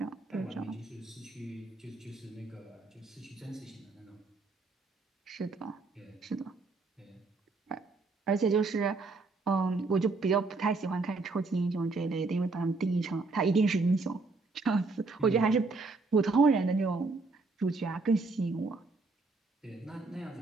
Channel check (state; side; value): quieter; left; 3.7 dB